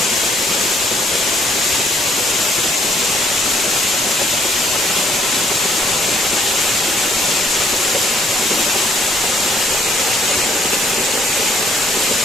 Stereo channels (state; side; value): normal; both; correlation 0.65